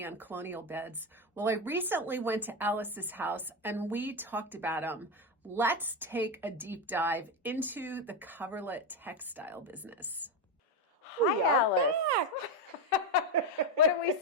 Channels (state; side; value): normal; both; correlation 0.11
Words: on colonial beds? Well, I recently went to Alice's house and we talked about them. Let's take a deep dive into the coverlet textile business. Hi, Alice. Back. What are we